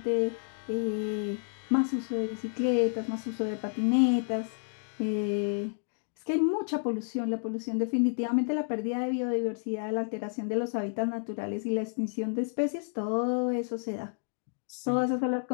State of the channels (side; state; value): right; silent; digital silence